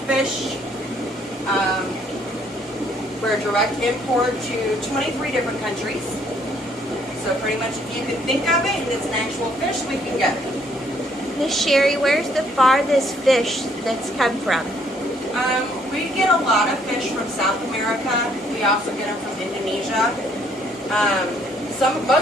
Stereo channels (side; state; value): both; normal; correlation 0.66